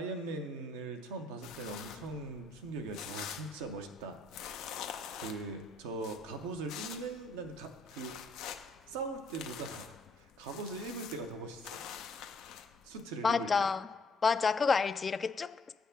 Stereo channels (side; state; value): right; quieter; 3.0 dB